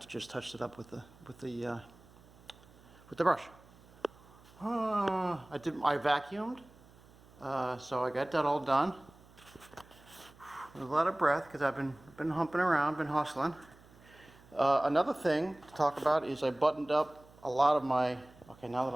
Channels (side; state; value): right; noise; hum, 25 dB below the sound